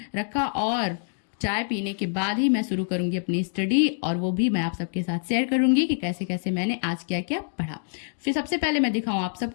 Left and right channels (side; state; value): right; silent; digital silence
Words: रखा और चाय पीने के बाद ही मैं शुरू करूंगी अपनी स्टडी, और वो भी मैं आप सबके साथ शेयर करूंगी कि कैसे कैसे मैंने आज क्या क्या पढ़ा। फिर सबसे पहले मैं दिखाऊं आप